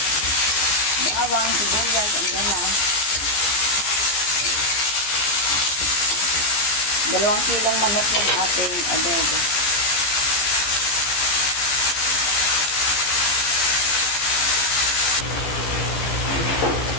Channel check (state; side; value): late; right; 15 ms